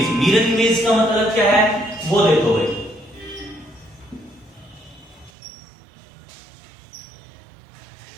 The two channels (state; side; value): drops out; left; at 5.3 s